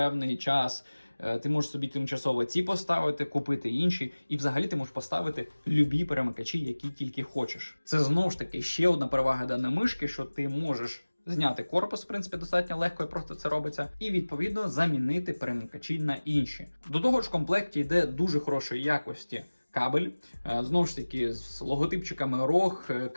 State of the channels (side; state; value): both; inverted; correlation -1.00